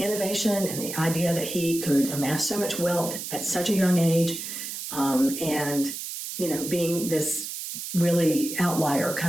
and the idea that he could amass so much wealth at such a young age, and being this really outlier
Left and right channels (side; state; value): right; noise; hiss, 7 dB below the sound